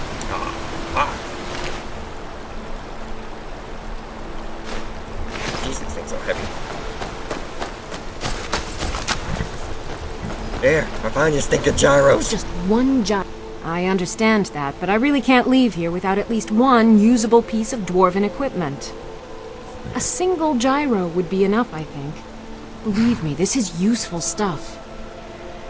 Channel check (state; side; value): identical; both; correlation 1.00